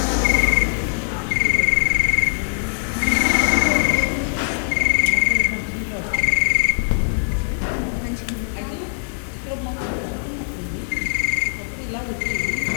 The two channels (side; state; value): right; silent; 65 dB below the other